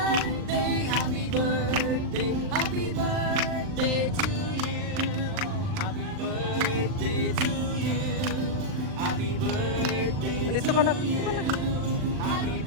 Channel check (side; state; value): left; late; 39 ms